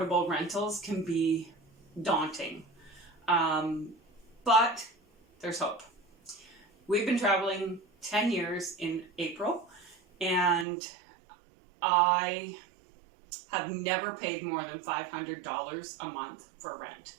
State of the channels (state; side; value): drops out; left; at 10.7 s